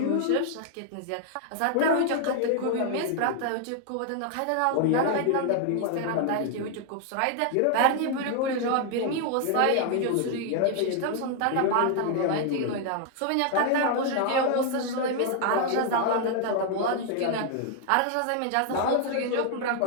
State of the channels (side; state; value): both; different; correlation 0.00